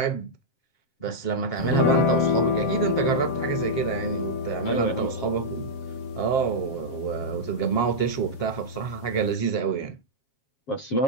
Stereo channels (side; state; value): right; late; 7.5 ms